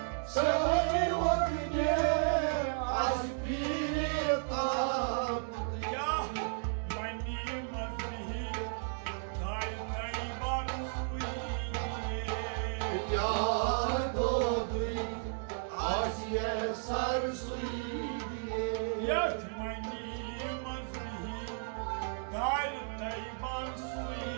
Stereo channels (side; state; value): left; silent; digital silence